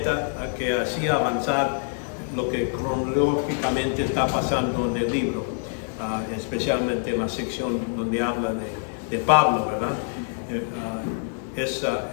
que hacía avanzar lo que cronológicamente está pasando en el libro, especialmente en la sección donde habla de Pablo, ¿verdad?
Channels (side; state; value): right; silent; 56 dB below the other